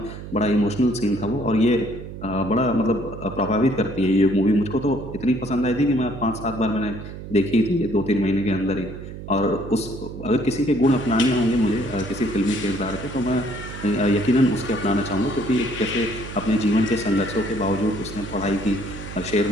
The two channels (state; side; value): noise; right; hum, 11 dB below the sound